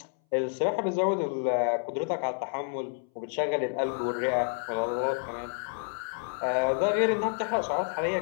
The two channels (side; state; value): right; silent; 58 dB below the other